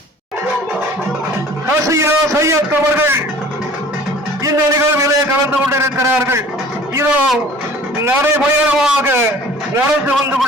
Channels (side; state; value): both; normal; correlation 0.47